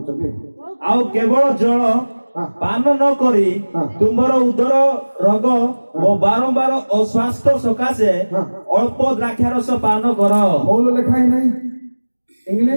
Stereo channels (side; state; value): both; inverted; correlation -1.00